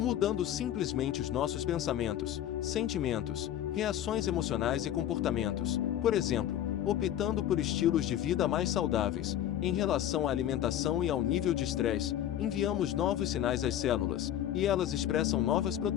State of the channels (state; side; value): quieter; right; 11.3 dB